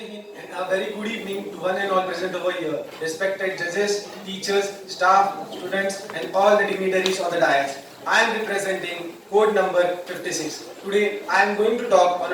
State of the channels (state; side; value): identical; both; correlation 1.00